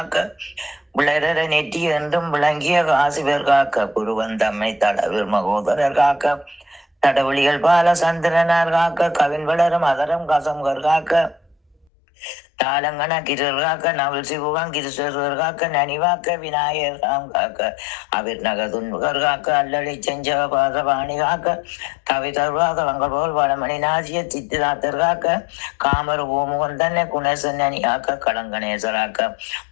விளரர நெற்றி என்றும் விளங்கிய காசிவர் காக்க, புருவந்தம்மை தடவில் மகோதரர் காக்க, தடவழிகள் பால சந்திரனார் காக்க, கவின் வளரும் அதரம் கசம்கர் காக்க, தாளங்கன கிரர் காக்க, நவல் சிவுகம் கிருஷ்ணர் காக்க, நனிவாக்க விநாயகர் ராம் காக்க, அவிர் நகதுன்முகர் காக்க, அல்லளி செஞ்ச பாசபாணி காக்க, கவி தருவாதவங்கள் போல் வளமணி நாசிய சித்திராத்தர் காக்க, காமர் ஓமுகன் தன்னை குணேசன்னி காக்க, களங்கணேசராக்க,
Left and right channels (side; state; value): right; drops out; at 11.9 s